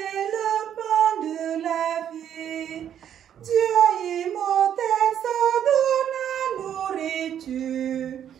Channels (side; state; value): left; quieter; 9.6 dB